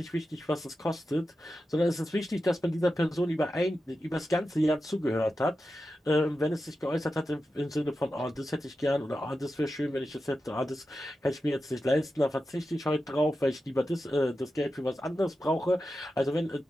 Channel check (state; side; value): normal; both; correlation 0.91